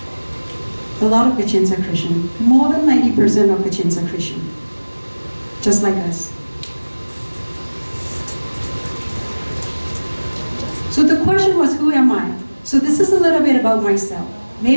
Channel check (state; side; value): inverted; both; correlation -1.00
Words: A lot of Kachins are Christian. More than 90% of Kachins are Christian. Just like us. So the question was, who am I? So this is a little bit about myself.